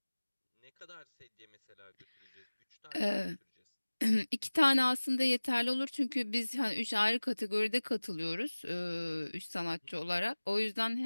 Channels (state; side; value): inverted; both; correlation -1.00